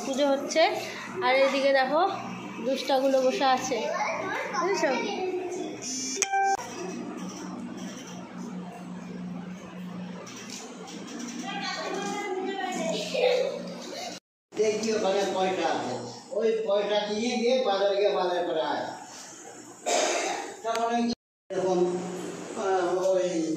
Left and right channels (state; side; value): identical; both; correlation 1.00